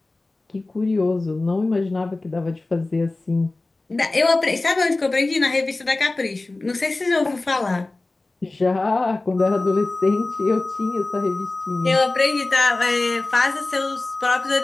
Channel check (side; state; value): right; quieter; 3.1 dB